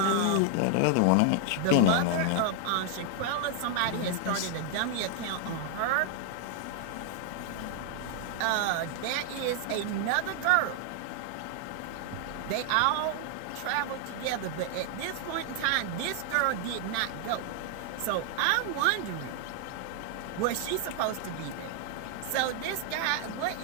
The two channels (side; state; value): both; different; correlation 0.00